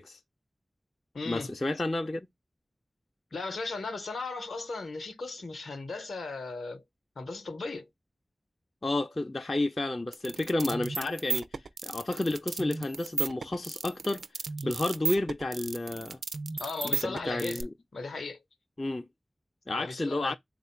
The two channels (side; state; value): both; normal; correlation 0.93